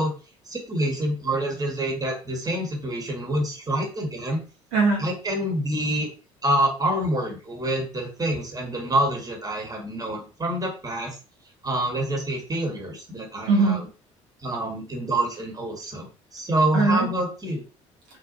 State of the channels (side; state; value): both; normal; correlation 0.57